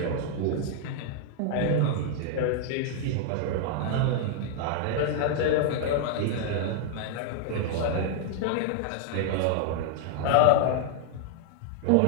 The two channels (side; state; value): both; different; correlation 0.00